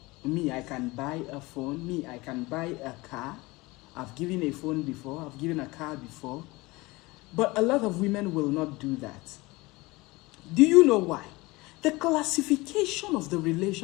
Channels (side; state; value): right; quieter; 22.4 dB